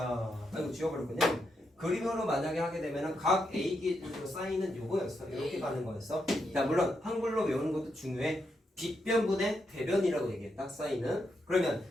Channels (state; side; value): normal; both; correlation 0.82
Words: 아이고 지워버렸군요. 그림으로 만약에 하게 되면은 각 A 기준으로 사인은 요거였어. 이렇게 A. 가는 거였어. 자, 물론 한글로 외우는 것도 중요해. 빗변분의 대변이라고 얘기했다. 사인은. 그러면